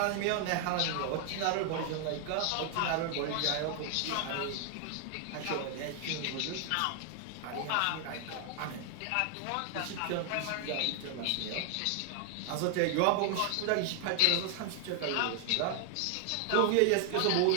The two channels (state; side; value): different; both; correlation 0.00